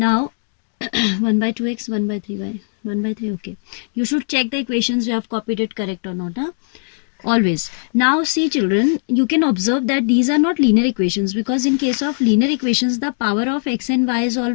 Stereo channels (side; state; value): right; silent; digital silence